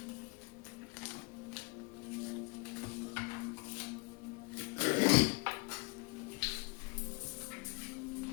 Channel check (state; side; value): quieter; right; 27.6 dB